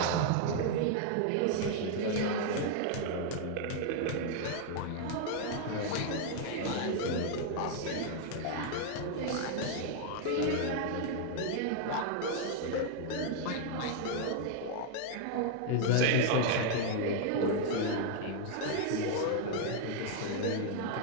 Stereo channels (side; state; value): both; different; correlation 0.00